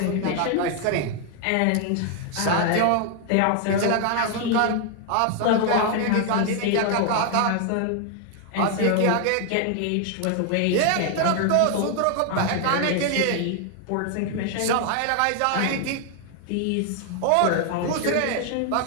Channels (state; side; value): different; both; correlation 0.00